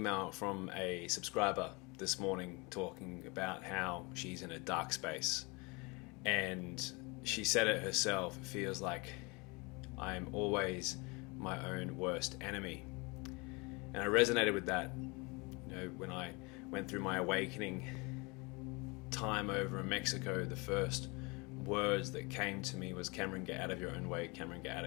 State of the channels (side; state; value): right; quieter; 27.8 dB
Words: from a subscriber this morning talking about how she's in a dark space. And she said it herself, it feels like I'm always my own worst enemy. And I resonated with that. When I went through my awakening time over in Mexico, the first words that came to me was, Cameron, get out of your own way. Cameron, get out